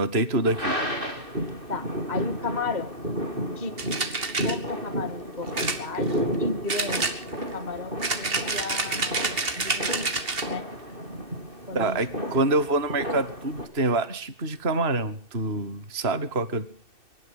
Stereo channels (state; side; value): late; left; 2.8 ms